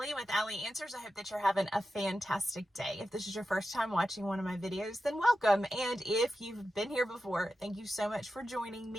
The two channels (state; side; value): normal; both; correlation 0.91